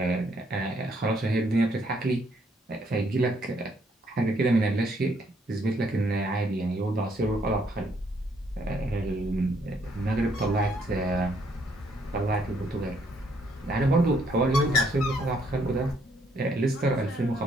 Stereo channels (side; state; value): both; normal; correlation 0.70